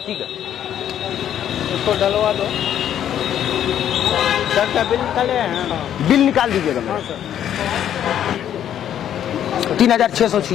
है? इसको डलवा दो। सर का बिल निकाले हैं? बिल निकाल दीजिएगा मेरा।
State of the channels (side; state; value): right; quieter; 10.3 dB